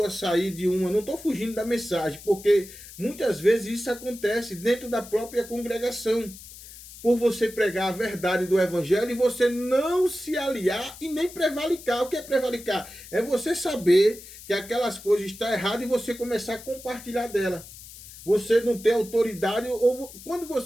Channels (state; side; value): noise; left; hiss, 16 dB below the sound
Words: sair de uma... Não estou fugindo da mensagem, porque muitas vezes isso acontece dentro da própria congregação. Por você pregar a verdade do evangelho e você não se aliar e nem prevaricar. O que é prevaricar? É você saber que aquelas coisas estão erradas e você começar a compartilhar dela. Você não ter autoridade, ou quando